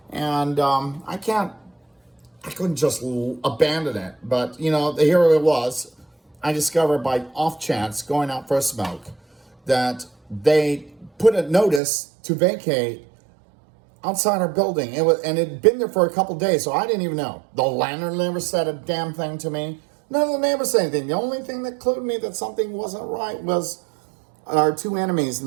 And I couldn't just abandon it. But, here it was. I discovered by off chance, going out for a smoke, that they put a notice to vacate outside our building. It had been there for a couple days, so I didn't even know. The landlord never said a damn thing to me. None of the neighbors said anything. The only thing that clued me that something wasn't right was our two enemies in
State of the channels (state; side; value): drops out; left; at 11.8 s